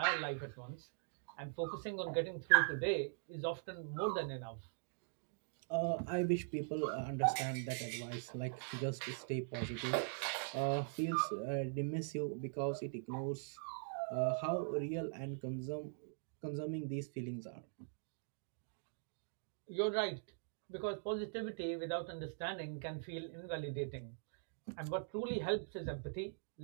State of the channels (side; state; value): left; silent; digital silence